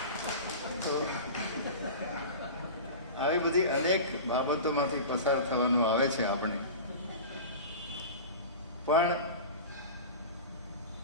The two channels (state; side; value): inverted; both; correlation -0.32